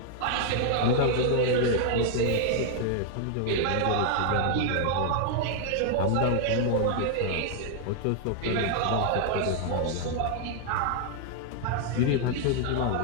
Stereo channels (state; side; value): different; both; correlation 0.00